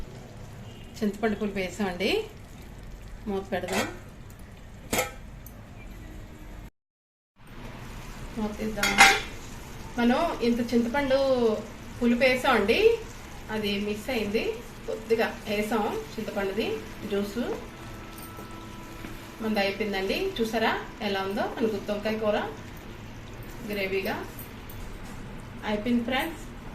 చింతపండు పులుపు వేసామండి, మూత పెడదాం. మూత తీద్దాం. మనం ఇంత చింతపండు పులుపు వేసామండి, అది మిస్ అయింది. కొద్దిగా వేసాం చింతపండుది జ్యూసు. మనది అయిపోయిందండి. చూసారా ఎలా ఉందో మన గుత్తి వంకాయ కూర గ్రేవీగా అయిపోయింది. ఫ్రెండ్స్,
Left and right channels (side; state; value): both; identical; correlation 1.00